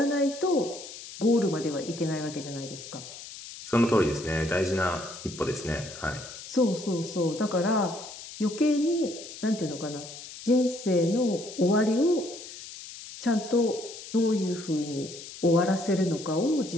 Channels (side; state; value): left; noise; hiss, 13 dB below the sound